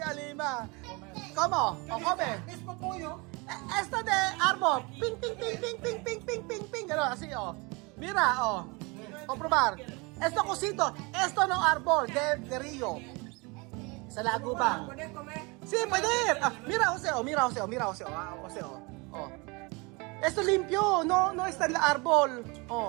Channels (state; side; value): quieter; left; 27.6 dB